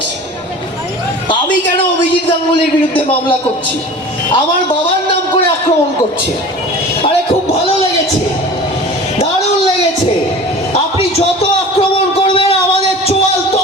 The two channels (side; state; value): both; normal; correlation 0.39